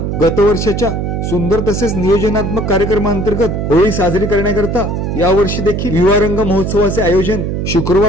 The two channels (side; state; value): right; noise; hum, 2 dB below the sound